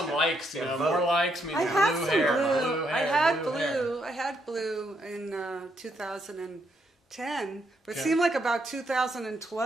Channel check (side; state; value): both; normal; correlation 0.76